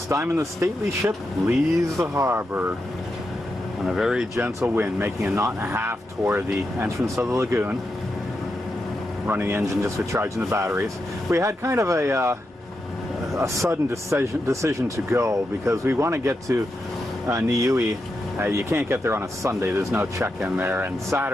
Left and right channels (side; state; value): both; normal; correlation 0.86